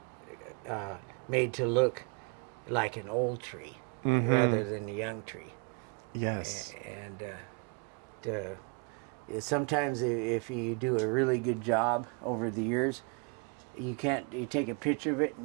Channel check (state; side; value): quieter; left; 35.5 dB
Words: made to look like an old tree rather than a young tree. Yes. And sometimes if you do a really good job over the years, you take a picture of it